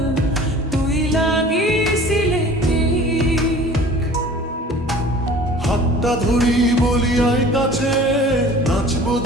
তুই লাগিয়েছিলে টিক। হাতটা ধরি বলি আয় কাছে, নাচবো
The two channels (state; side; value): normal; both; correlation 0.45